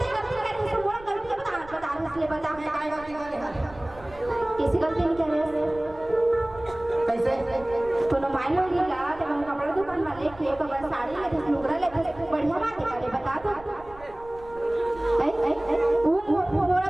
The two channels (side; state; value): right; noise; rumble, 20 dB below the sound